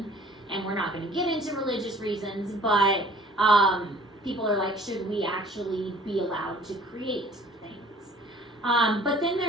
and we're not going to get into religious reasons, but people are like, should we actually be allowed to create things? But then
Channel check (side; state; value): both; normal; correlation 0.52